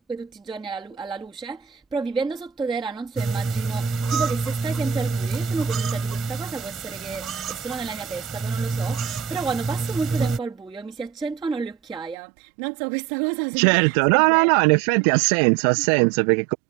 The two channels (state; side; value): drops out; left; at 12.2 s